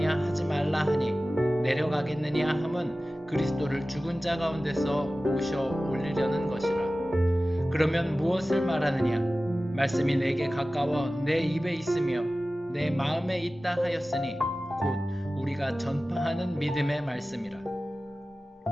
하지 말라 하니 내려가겠느냐 함은 그리스도를 죽은 자 가운데서 모셔 올리려는 것이라. 그러면 무엇을 말하느냐? 말씀이 내게 가까워 내 입에 있으며 내 마음에 있다 하였으니 곧 우리가 전파하는 믿음의 말씀이라.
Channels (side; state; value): both; normal; correlation 0.96